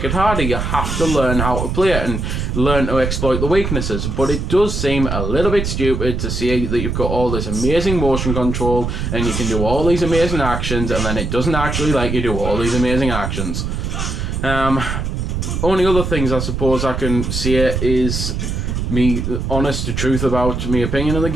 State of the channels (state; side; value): noise; right; rumble, 2 dB below the sound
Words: it harder. You have to learn how to play it and learn to exploit the weaknesses, but it does seem a little bit stupid to see that you've got all this amazing motion control and you can do all these amazing actions, and then it doesn't actually let you do all these amazing actions. Only other things I suppose I can say is me honest to truth about my opinion of the